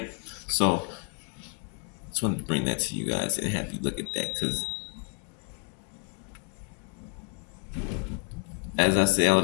So, just wanted to bring that to you guys and have you look at that because, as I say all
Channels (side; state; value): right; quieter; 37.5 dB